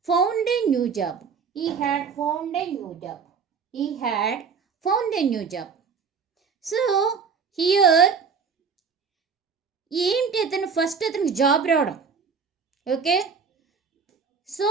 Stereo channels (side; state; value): left; quieter; 5.8 dB